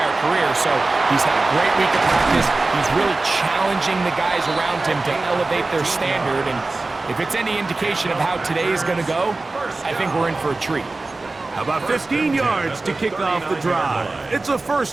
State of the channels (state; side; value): quieter; left; 3.3 dB